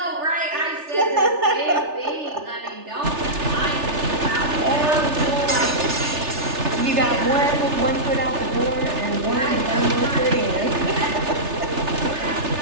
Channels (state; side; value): late; left; 3.3 ms